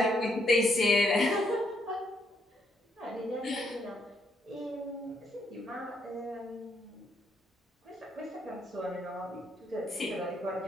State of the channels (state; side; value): normal; both; correlation 0.74